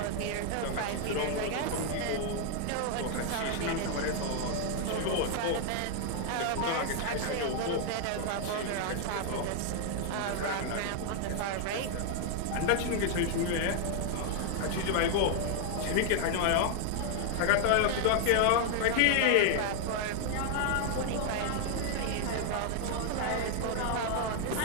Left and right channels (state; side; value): different; both; correlation 0.00